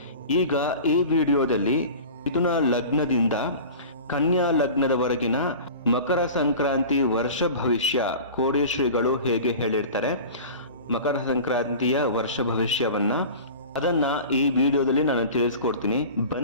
ಈಗ ಈ ವಿಡಿಯೋದಲ್ಲಿ ಮಿಥುನ ಲಗ್ನದಿಂದ ಕನ್ಯಾ ಲಗ್ನದವರೆಗಿನ ಮಕರ ಸಂಕ್ರಾಂತಿ ವರ್ಷ ಭವಿಷ್ಯ ಕೋಡಿ ಶ್ರೀಗಳು ಹೇಗೆ ಹೇಳಿರ್ತಾರೆ, ಮಕರ ಸಂಕ್ರಾಂತಿಯ ವರ್ಷ ಭವಿಷ್ಯವನ್ನ ಅದನ್ನ ಈ ವಿಡಿಯೋದಲ್ಲಿ ನಾನು ತಿಳಿಸ್ಕೊಡ್ತೀನಿ.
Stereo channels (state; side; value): inverted; both; correlation -0.37